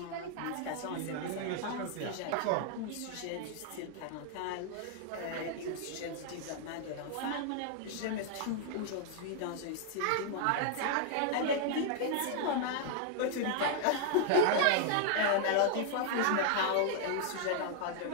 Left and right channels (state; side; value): different; both; correlation 0.00